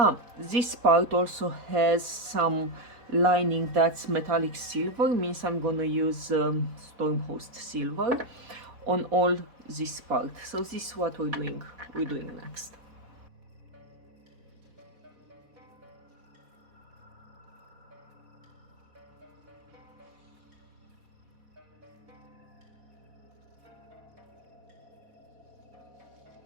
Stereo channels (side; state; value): left; late; 4.1 ms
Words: this part also has some lining that's metallic silver, means I'm gonna use Stormhost silver on all this part. So this is what we're doing next.